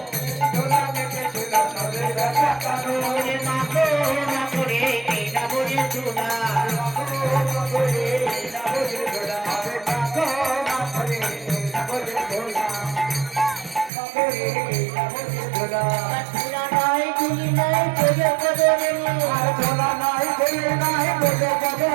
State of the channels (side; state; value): left; drops out; at 13.9 s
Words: ধুলা মেখেছিল নজের বেটা কানো রে মাখো মাখো রে এই নামজের ধুলো মাখো মাখো রে এই নামজের ধুলো মাখো মাখো রে এই নামজের ধুলো মাখো রে এই নামজের ধুলো ধুলা নাই ধুলি নাই পদে পদে রে আর ধুলা নাই ধুলি নাই পদে পদে